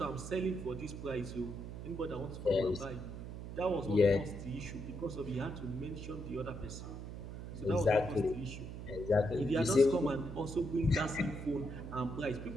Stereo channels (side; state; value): right; noise; hum, 9 dB below the sound